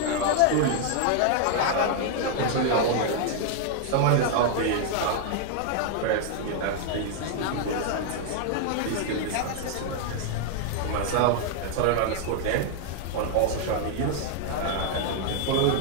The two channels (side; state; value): both; different; correlation 0.00